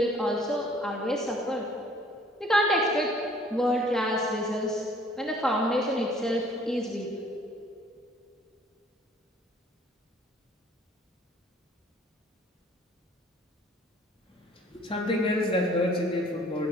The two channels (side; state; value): both; normal; correlation 0.56